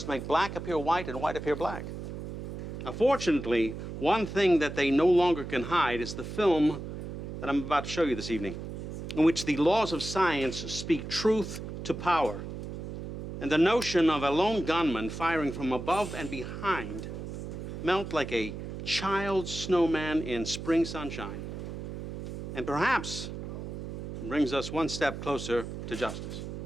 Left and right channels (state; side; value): noise; right; hum, 7 dB below the sound